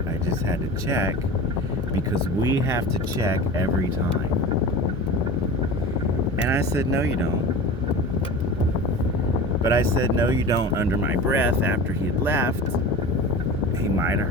I just had to check because we have to check every time. And I said, no, you don't. But I said, no, you don't, under my breath after he had left. He might have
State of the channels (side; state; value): both; normal; correlation 0.33